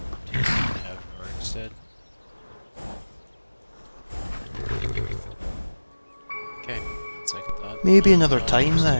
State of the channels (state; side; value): inverted; both; correlation -1.00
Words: Do you have work instead? Okay, that's like I thought. Maybe another time